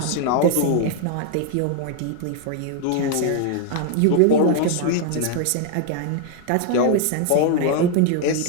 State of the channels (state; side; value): different; both; correlation 0.00